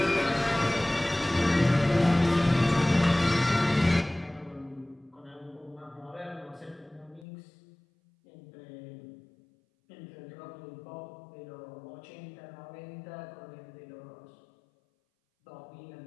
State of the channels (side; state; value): right; drops out; at 7.2 s